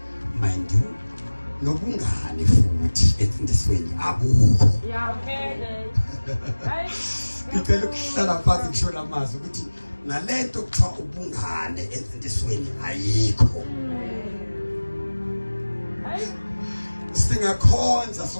mind you nobungane futhi emfundisweni abukho ngicela ukuhlala phansi ngisho amazwi ukuthi nalento kuthiwa ubungane emfundisweni ayikho. Singakhonza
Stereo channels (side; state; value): both; inverted; correlation -1.00